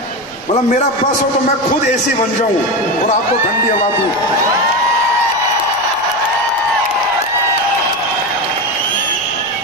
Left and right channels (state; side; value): noise; right; rumble, 28 dB below the sound